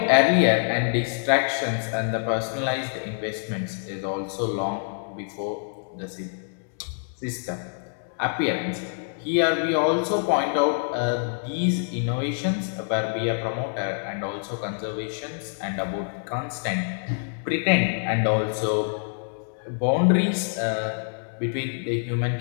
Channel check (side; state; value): right; silent; 61 dB below the other